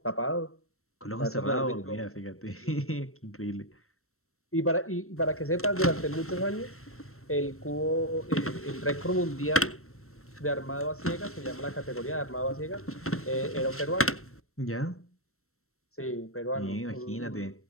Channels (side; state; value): right; late; 0.63 ms